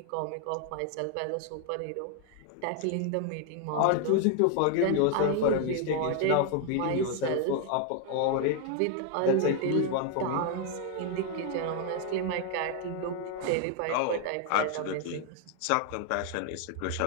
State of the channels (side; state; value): both; different; correlation 0.00